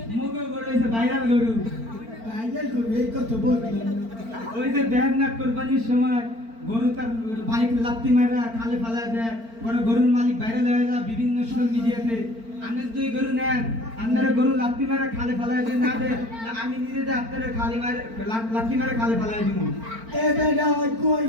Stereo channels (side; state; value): left; late; 4.4 ms